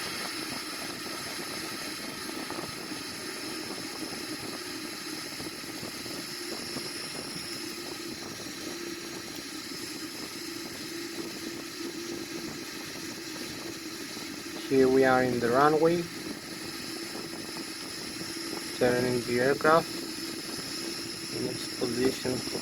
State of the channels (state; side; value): identical; both; correlation 1.00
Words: Here we are in the runway, turning the aircraft in its position for